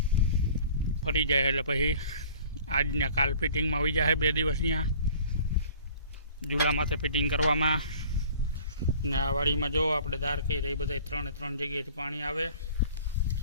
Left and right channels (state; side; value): inverted; both; correlation -0.49